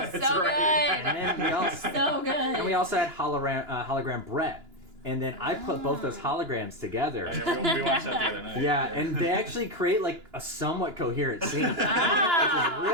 so good. And we also So good. and we also had hologram Brett. And then I put both those holograms together. Yeah, we watched that the other night. Yeah, and they actually create like a somewhat coherent scene. Which is Ah.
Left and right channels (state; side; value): late; left; 2.9 ms